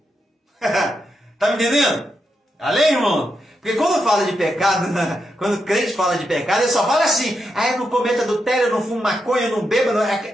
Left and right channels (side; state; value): both; normal; correlation 0.84